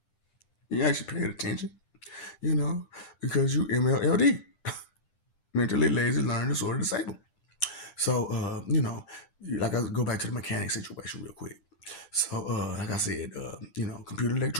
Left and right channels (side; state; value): right; late; 10 ms